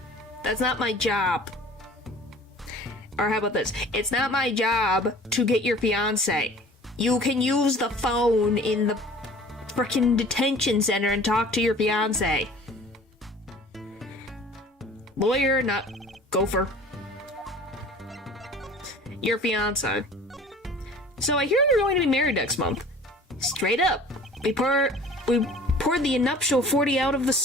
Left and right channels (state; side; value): normal; both; correlation 0.46